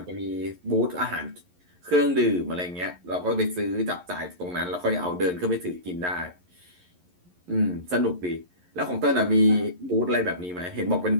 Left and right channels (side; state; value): left; late; 11 ms